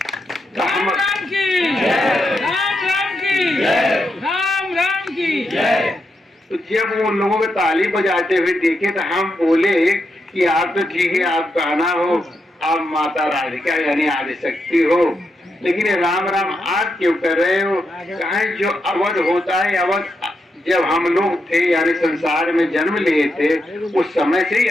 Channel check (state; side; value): normal; both; correlation 0.84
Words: राम राम की राम राम की राम राम की। तो जब वो लोगों को ताली बजाते हुए देखे तो हम बोले कि आप तो ठीक है, आप कान्हा हो, आप माता राधिका यानी आदिशक्ति हो, लेकिन ये राम राम आप क्यों कर रहे हो? कहा जो अवध होता है, अवध जब हम लोग थे यानी संसार में जन्म लिए थे उस समय से ही